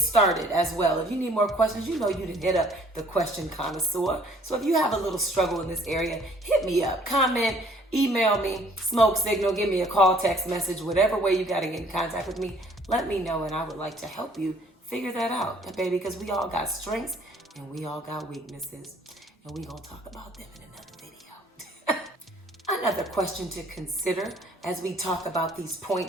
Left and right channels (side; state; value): both; normal; correlation 0.58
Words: as well. If you need more questions, you can hit up the question connoisseur. So if you have a little struggle in this area, hit me up, comment, email me, smoke signal, give me a call, text message, whatever way you got to get in contact with me, let me know, and I would like to help you figure that out, baby, because we all got strengths and we all got weaknesses, and we gonna talk about them in another video. Another question to consider as we talk about these